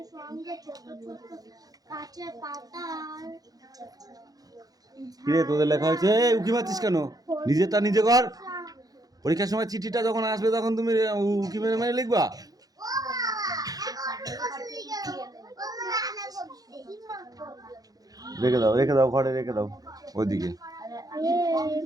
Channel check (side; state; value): left; late; 0.18 ms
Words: সঙ্গে ছোট ছোট কাছে পাতার। কিরে তোদের লেখা হয়েছে? উকি মারছিস কেন? নিজেরটা নিজে কর। পরীক্ষার সময় চিঠিটা যখন আসবে তখন তুমি উকি মেরে মেরে লিখবা। রেখে দাও ঘরে, রেখে দাও ওইদিকে।